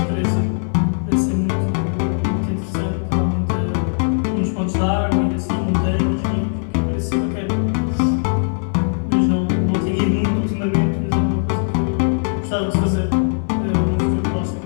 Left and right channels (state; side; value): silent; right; 66 dB below the other